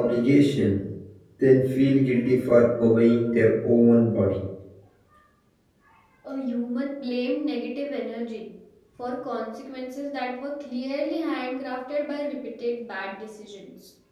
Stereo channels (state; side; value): identical; both; correlation 1.00